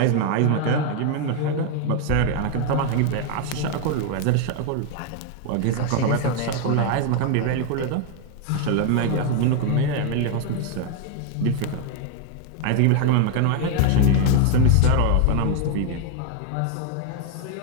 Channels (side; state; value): both; different; correlation 0.00